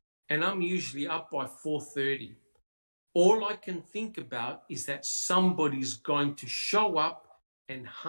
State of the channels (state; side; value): inverted; both; correlation -1.00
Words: and I'm usually up by 4:30. All I can think about is that somebody's going to show up and